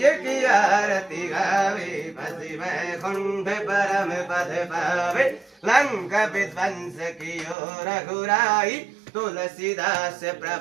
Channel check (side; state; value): left; drops out; at 7.6 s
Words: की आरती गावे बसी वैकुंठ परम पद पावे लंका विध्वंस की रघुराई तुलसीदास